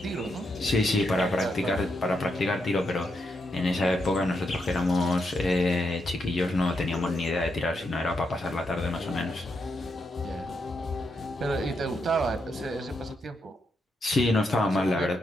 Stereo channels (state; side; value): normal; both; correlation 0.82